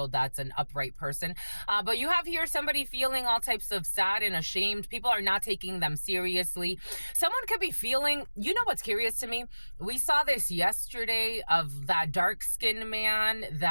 that's an upright person. But you have here somebody feeling all types of sad and ashamed. People are not taking them seriously. Someone could be feeling, you know what's curious to me? We saw this yesterday of that dark skinned man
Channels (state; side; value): inverted; both; correlation -1.00